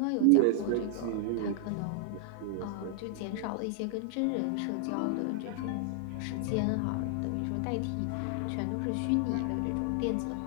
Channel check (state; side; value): different; both; correlation 0.00